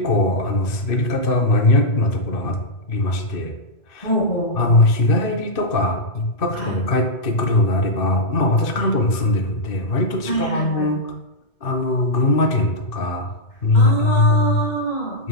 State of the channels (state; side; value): late; right; 2.5 ms